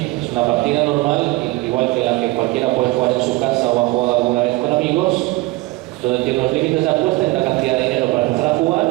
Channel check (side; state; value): left; quieter; 21.3 dB